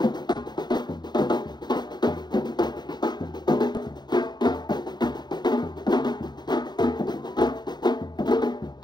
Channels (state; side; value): late; right; 0.21 ms